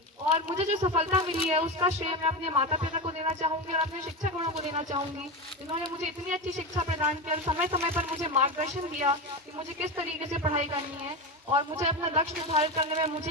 और मुझे जो सफलता मिली है उसका श्रेय मैं अपने माता पिता को देना चाहूँगी और अपने शिक्षकों को देना चाहूँगी, जिन्होंने मुझे इतनी अच्छी शिक्षा प्रदान की और समय समय पर मुझे मार्गदर्शन दिया कि मुझे किस तरीके से पढ़ाई करनी है। और मुझे अपना लक्ष्य निर्धारित करने में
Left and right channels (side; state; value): both; normal; correlation 0.19